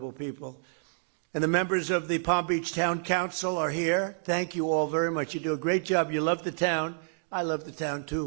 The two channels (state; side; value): silent; left; digital silence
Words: people. And the members of the Palm Beach Town Council are here. Thank you all very much. You do a great job. You love the town. I love the town,